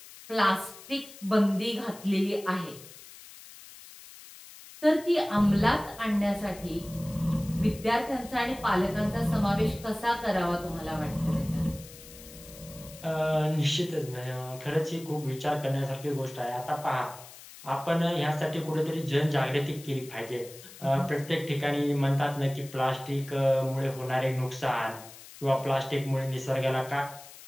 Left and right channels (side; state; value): left; noise; hiss, 18 dB below the sound